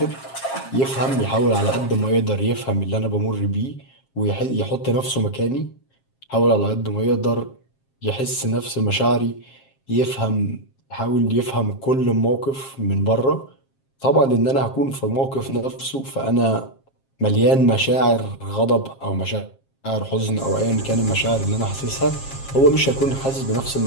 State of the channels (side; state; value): right; late; 7.5 ms